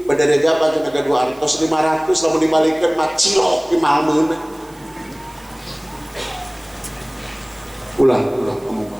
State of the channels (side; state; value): right; noise; hiss, 26 dB below the sound